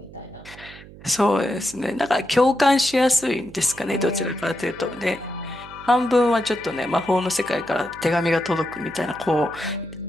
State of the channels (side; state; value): right; noise; hum, 18 dB below the sound